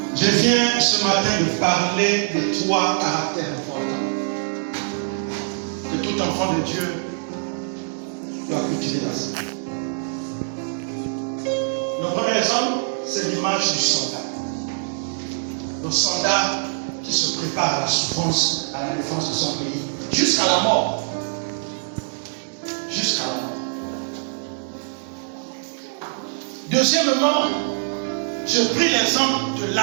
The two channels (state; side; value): silent; left; digital silence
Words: Je viens ce matin de parler de 3 caractères importants que tout enfant de Dieu doit cultiver dans sa vie. Le premier exemple, c'est l'image du soldat. Le soldat qui se prépare à la souffrance, à la défense de son pays, jusqu'à la mort. Jusqu'à la mort. Deuxièmement, je pris l'exemple de